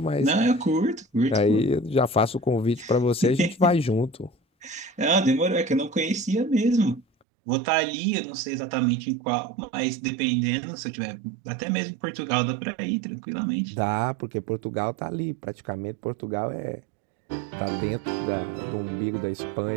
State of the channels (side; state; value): left; drops out; at 7.1 s